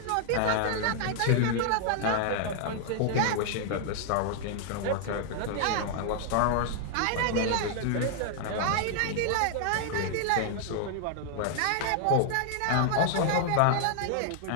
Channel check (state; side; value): different; both; correlation 0.00